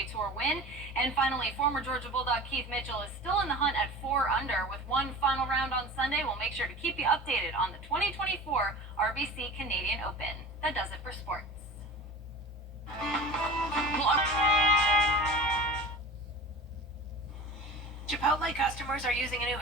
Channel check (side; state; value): both; normal; correlation 0.37